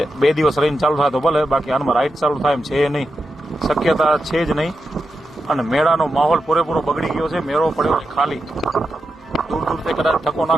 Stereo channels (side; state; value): both; normal; correlation 0.88